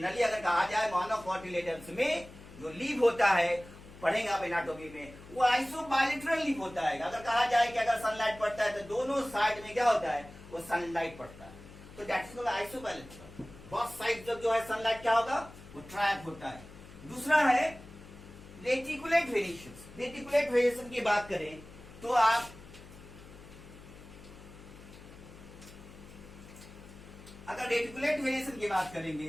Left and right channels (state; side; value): noise; left; hum, 18 dB below the sound